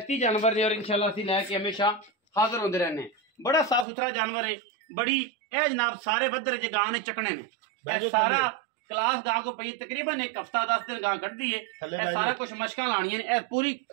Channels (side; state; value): left; drops out; at 3.9 s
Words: जानवर ने और इंशाल्लाह असीं लैके हमेशा हाज़र होंदे रहने। बड़ा साफ सुथरा जानवर है, बड़ी ए जनाब सारे बदर च गां ने चकने ने। सारा क्लास गां को पई तकरीबन एक हफ्ता 10 दिन गां कटदी है। सारा कुछ मशकां लानियां ने, पूरी